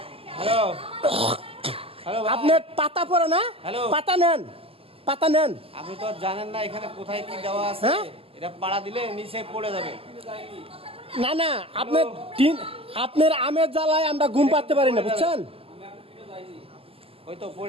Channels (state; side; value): late; left; 0.28 ms